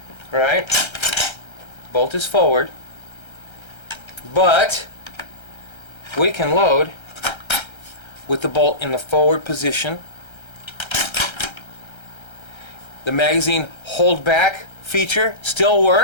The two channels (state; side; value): late; right; 1.3 ms